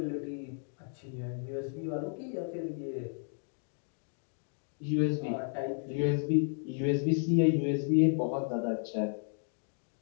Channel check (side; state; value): right; silent; 56 dB below the other